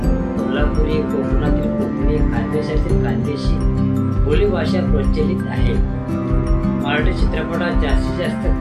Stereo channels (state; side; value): identical; both; correlation 1.00